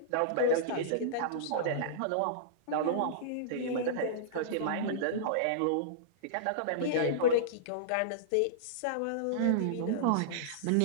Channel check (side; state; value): both; different; correlation -0.03